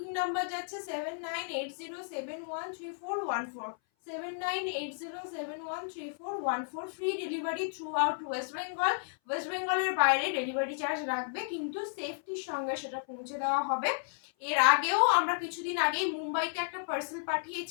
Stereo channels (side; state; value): right; silent; 56 dB below the other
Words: নাম্বার যাচ্ছে 7980713414, 7980713414। Free delivery through out West Bengal. West বেঙ্গলের বাইরে ডেলিভারি চার্জ লাগবে, কিন্তু সেফটির সঙ্গে সেটা পৌঁছে দেওয়া হবে। এর আগেও আমরা কিছুদিন আগেই মুম্বাইতে একটা পার্সেল